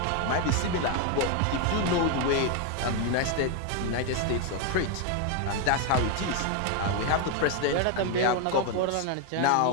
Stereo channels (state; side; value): different; both; correlation 0.01